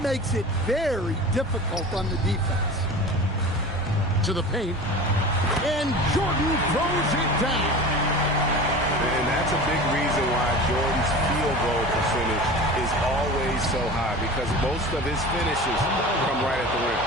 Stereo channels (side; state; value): right; noise; hum, 15 dB below the sound